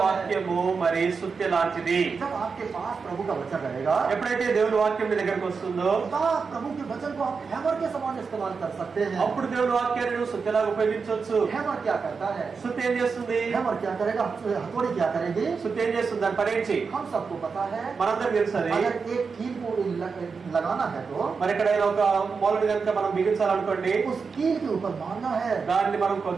వాక్యము మరి సుత్తి లాంటిది. जब आपके पास प्रभु का वचन रहेगा, ఎప్పుడైతే దేవుని వాక్యం మీ దగ్గరకు వస్తుందో, प्रभु के वचन को आप हैमर के समान इस्तेमाल कर सकते हैं। అప్పుడు దేవుని వాక్యాన్ని నువ్వు సుత్తిలాగా ఉపయోగించవచ్చు. हैमर क्या करता है? సుత్తి ఏం చేస్తుంది? हैमर क्या करेगा? हथौड़ी क्या करेगी? సుత్తి ఏం చేస్తుంది? దాని పని ఏంటి? हम सबको पता है। మనందరికి తెలుసు. अगर एक कील को लगाना है तो మరి ఇక్కడ ఒక మూలని కనుక మనం బిగించాలనుకోండి, उस कील के ऊपर मारना है। దాన్ని మనం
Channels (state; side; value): quieter; left; 5.2 dB